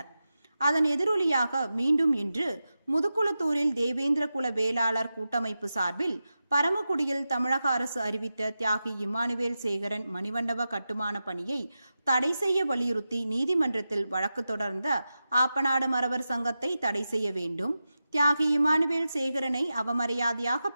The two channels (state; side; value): inverted; both; correlation -0.92